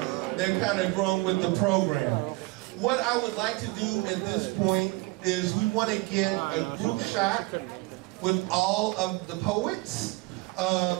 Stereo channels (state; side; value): quieter; left; 24.2 dB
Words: they're kind of grown with the program. What I would like to do at this point is we want to get a group shot with all of the poets.